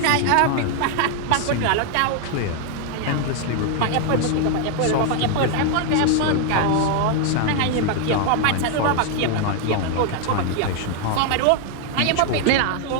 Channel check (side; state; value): both; different; correlation 0.00